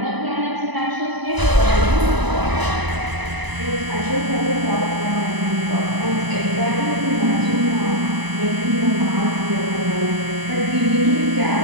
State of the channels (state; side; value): late; left; 1.0 ms